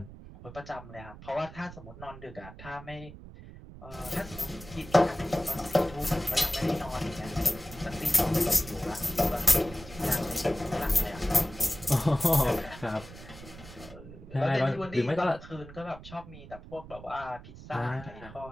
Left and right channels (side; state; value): right; noise; rumble, 16 dB below the sound